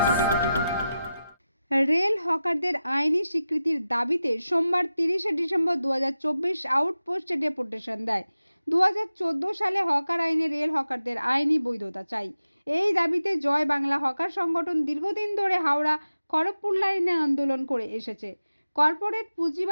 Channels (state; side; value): inverted; both; correlation -0.93